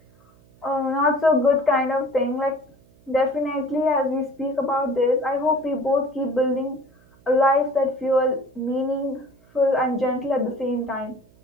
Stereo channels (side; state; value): right; noise; hum, 30 dB below the sound